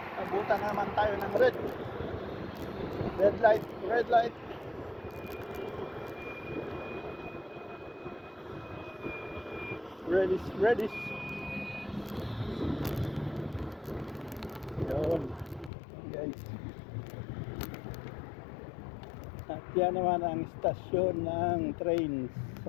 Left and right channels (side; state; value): right; drops out; at 15.7 s